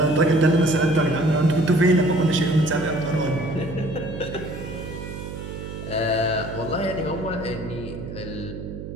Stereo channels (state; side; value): noise; right; hum, 9 dB below the sound